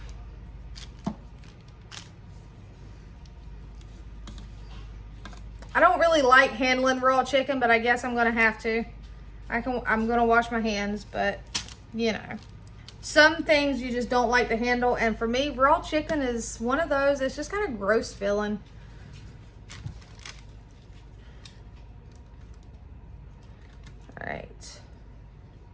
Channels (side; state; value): both; identical; correlation 1.00